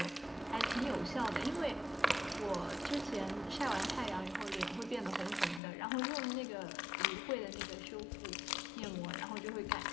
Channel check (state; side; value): drops out; right; at 5.6 s